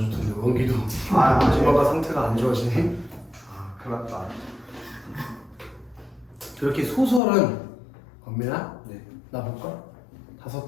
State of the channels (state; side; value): drops out; right; at 7.2 s